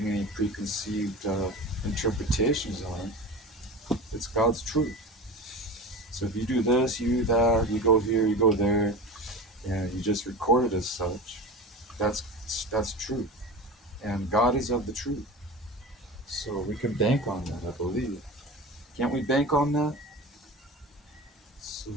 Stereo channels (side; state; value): both; normal; correlation 0.31